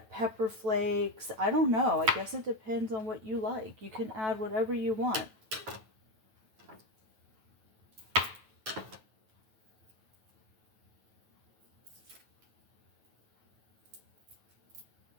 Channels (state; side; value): late; left; 9.2 ms